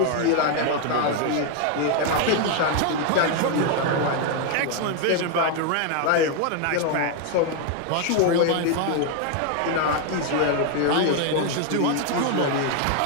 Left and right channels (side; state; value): both; different; correlation 0.01